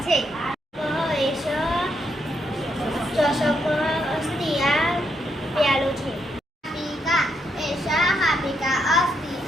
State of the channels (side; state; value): both; normal; correlation 0.78